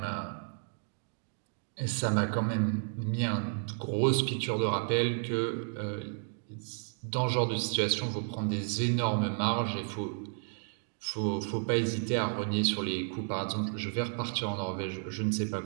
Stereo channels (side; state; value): left; silent; 56 dB below the other